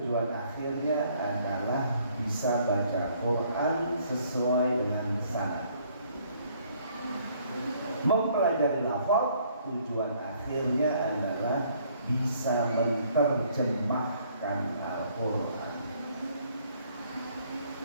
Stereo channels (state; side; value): inverted; both; correlation -0.63